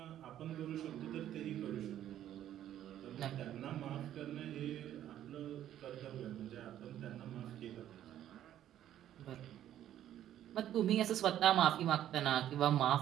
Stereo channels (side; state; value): left; quieter; 11.6 dB